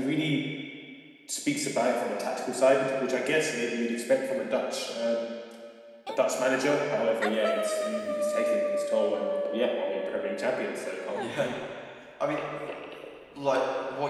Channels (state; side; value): identical; both; correlation 1.00